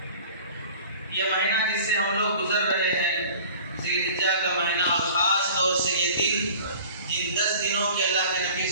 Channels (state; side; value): inverted; both; correlation -0.44